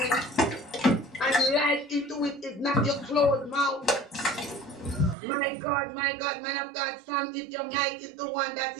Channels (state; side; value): drops out; left; at 5.2 s